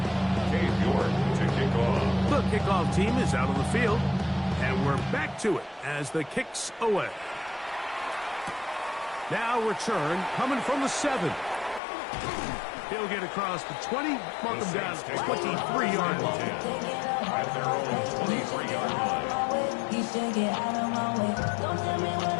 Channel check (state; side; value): drops out; right; at 11.8 s